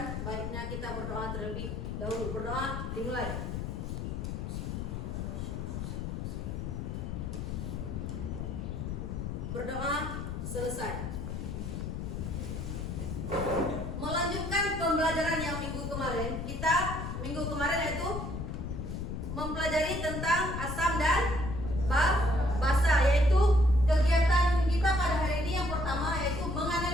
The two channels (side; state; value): left; noise; rumble, 4 dB below the sound